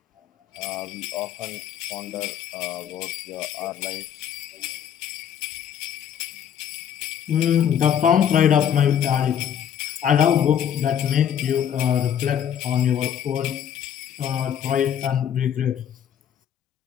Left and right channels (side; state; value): right; quieter; 9.2 dB